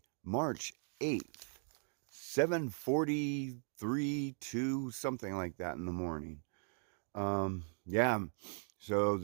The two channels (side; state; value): left; silent; 52 dB below the other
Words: March 8th, 7:43, 2, something like that in the morning. Yeah, so